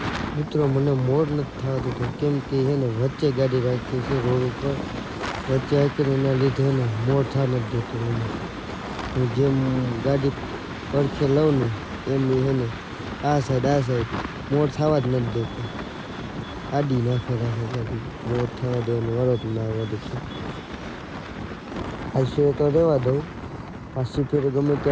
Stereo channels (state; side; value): identical; both; correlation 1.00